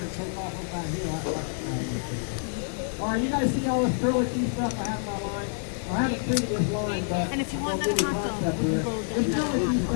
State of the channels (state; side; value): silent; right; digital silence